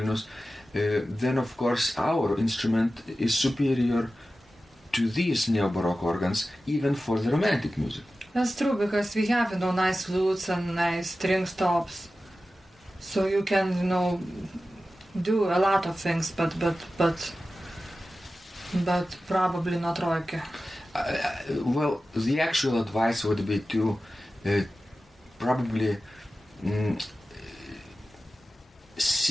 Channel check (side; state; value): both; normal; correlation 0.94